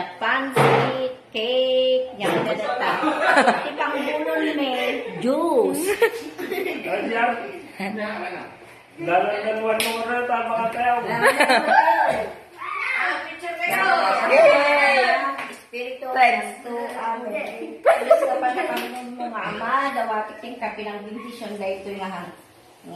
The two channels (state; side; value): identical; both; correlation 1.00